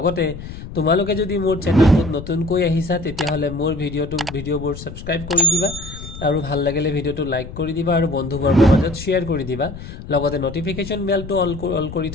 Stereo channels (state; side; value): noise; left; rumble, 12 dB below the sound